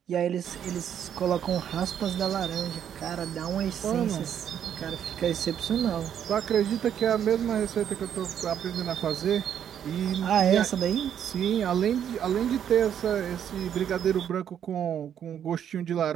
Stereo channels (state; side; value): quieter; left; 9.2 dB